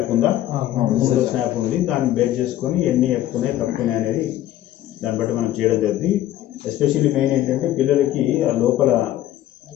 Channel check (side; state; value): right; quieter; 13.4 dB